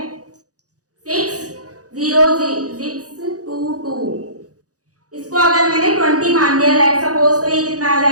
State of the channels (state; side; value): late; left; 0.67 ms